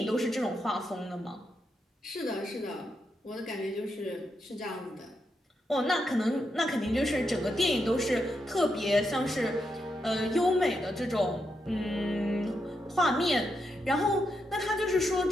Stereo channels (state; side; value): normal; both; correlation 0.83